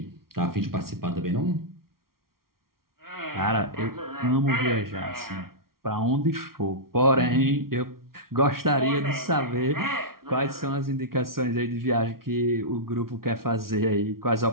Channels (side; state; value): left; late; 0.93 ms